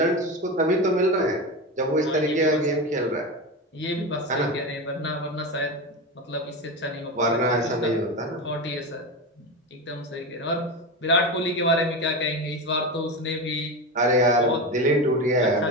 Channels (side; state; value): both; normal; correlation 0.20